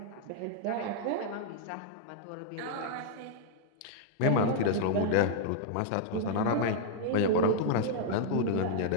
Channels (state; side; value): different; both; correlation -0.02